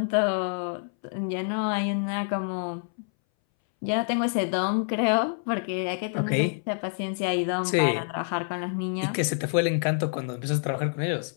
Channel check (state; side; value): silent; right; 60 dB below the other